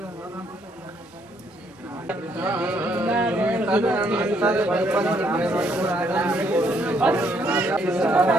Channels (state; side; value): normal; both; correlation 0.70